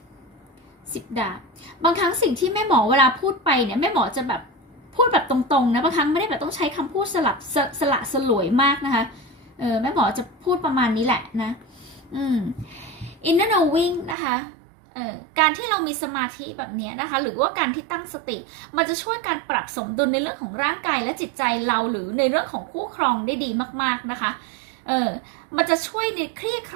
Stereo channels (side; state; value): left; drops out; at 14.2 s